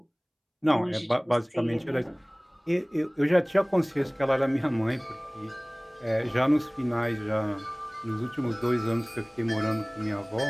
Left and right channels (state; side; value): identical; both; correlation 1.00